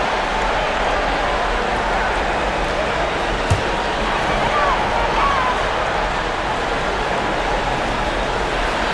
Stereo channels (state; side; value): identical; both; correlation 1.00